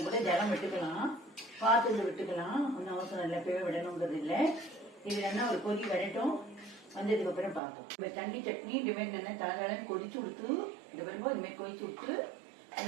கூட ஜலம் விட்டுக்கலாம், பார்த்து விட்டுக்கலாம். ஒன்றும் அவசரம் இல்லை, பேவை விடணுங்கிறது இல்லை. இது நல்லா ஒரு கொதி வரட்டும். வந்ததுக்கு அப்புறம் பார்ப்போம். இப்போ தண்ணி சட்னி இந்தமாரி நல்லா தலன்னு கொதிச்சு விட்டு இந்த வரும்போது இந்தமாரி கொதிச்சு விட்டு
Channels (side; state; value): left; drops out; at 7.6 s